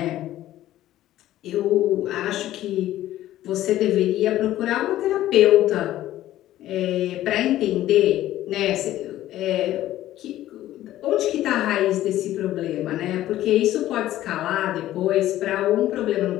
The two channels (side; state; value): right; quieter; 13.9 dB